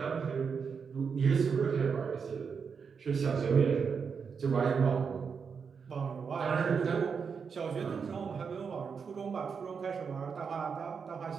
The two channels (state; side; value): quieter; left; 6.0 dB